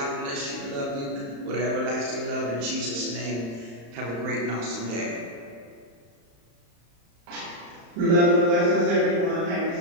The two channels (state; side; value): late; left; 35 ms